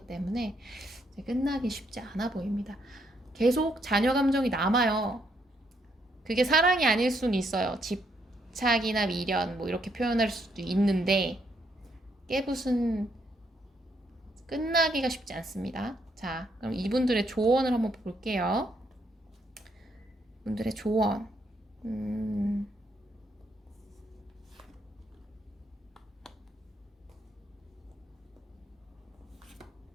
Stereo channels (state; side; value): normal; both; correlation 0.74